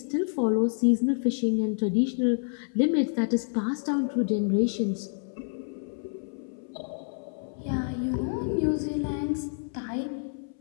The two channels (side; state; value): right; silent; 59 dB below the other